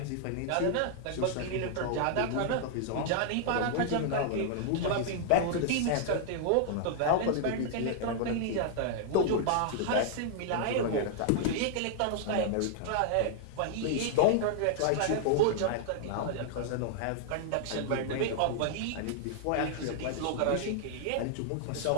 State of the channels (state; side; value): different; both; correlation -0.01